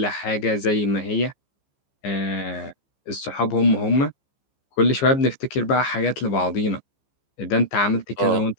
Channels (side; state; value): right; late; 15 ms